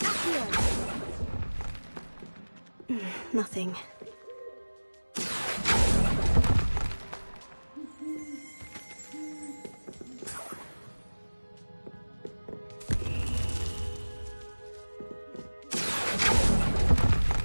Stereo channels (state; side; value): inverted; both; correlation -1.00